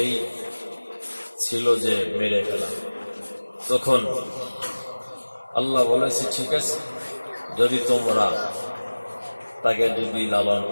ছিল যে মেরে ফেলা। তখন আল্লাহ বলেছে, ঠিক আছে, যদি তোমরা তাকে যদি লালন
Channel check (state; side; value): inverted; both; correlation -1.00